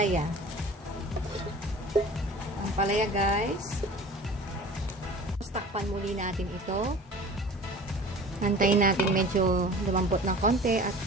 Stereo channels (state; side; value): normal; both; correlation 0.42